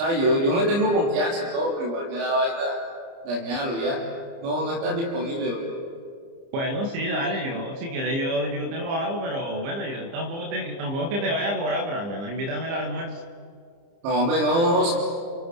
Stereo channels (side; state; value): left; late; 30 ms